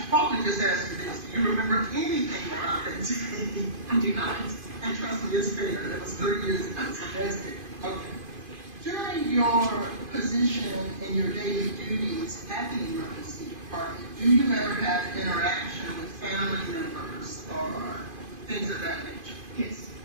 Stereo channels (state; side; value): late; left; 2.5 ms